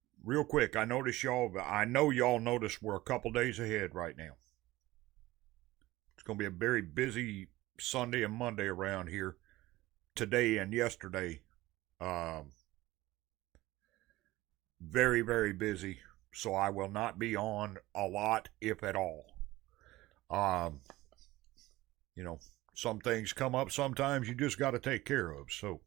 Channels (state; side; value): quieter; left; 18.1 dB